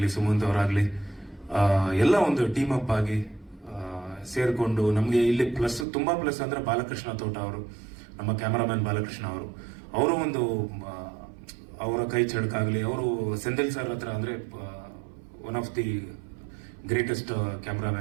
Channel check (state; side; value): drops out; left; at 5.9 s